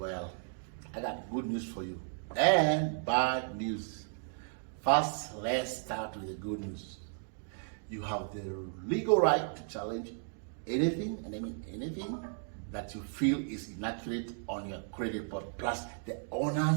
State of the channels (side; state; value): left; silent; digital silence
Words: I got good news for you and bad news. First, let's start with the good news. You have the legal right to challenge anything, and I mean anything, that you feel is inaccurate on your credit report. Plus, the